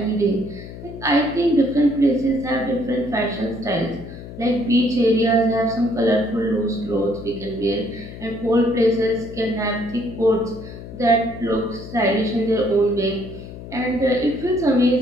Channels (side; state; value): left; noise; hum, 13 dB below the sound